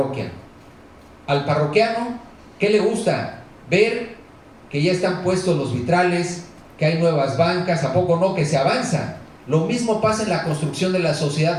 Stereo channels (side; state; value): both; identical; correlation 1.00